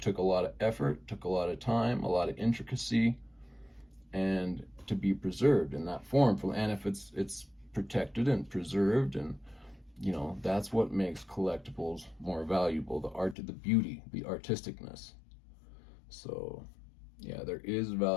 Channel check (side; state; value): right; drops out; at 13.4 s